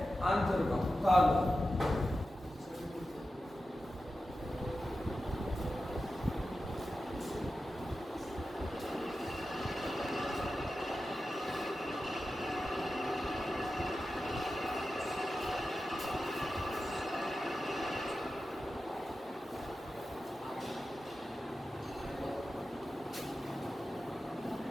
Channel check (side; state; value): both; normal; correlation 0.92